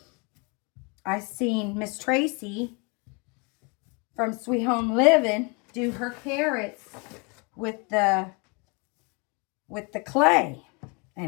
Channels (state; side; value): quieter; right; 31.2 dB